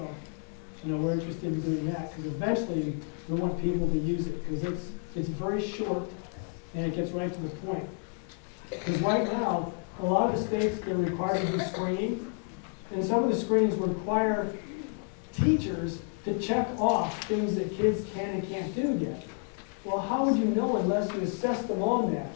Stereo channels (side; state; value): right; quieter; 39.9 dB